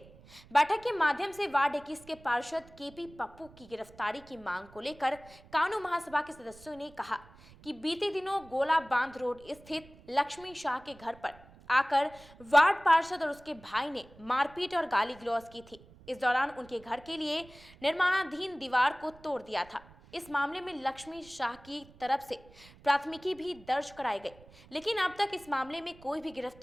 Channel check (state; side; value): noise; right; rumble, 23 dB below the sound